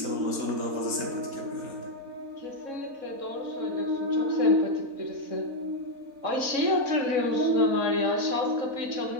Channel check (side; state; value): left; late; 4.0 ms